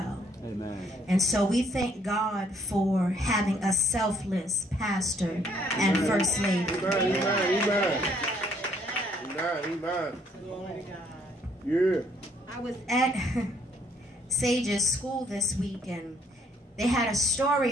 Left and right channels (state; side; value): normal; both; correlation 0.66